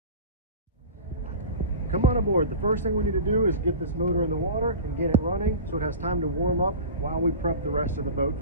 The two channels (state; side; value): inverted; both; correlation -0.34